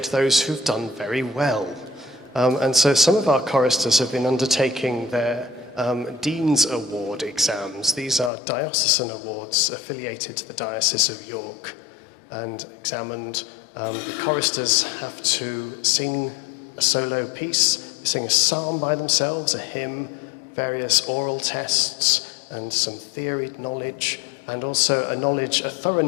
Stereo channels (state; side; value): drops out; right; at 8.3 s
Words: those who've done very well. And so some of our choristers have been undertaking their Dean's Award exams. These are diocesan awards affiliated to the Diocese of York, and examined. The choristers have to sing a solo piece, sing a psalm by themselves, a hymn, various oral tests, and some theory knowledge, and also a thorough